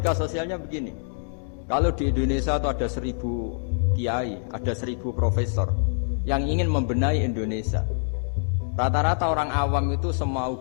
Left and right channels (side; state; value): right; silent; digital silence